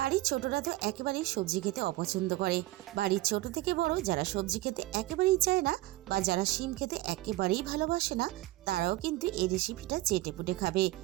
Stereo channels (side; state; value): left; quieter; 18.0 dB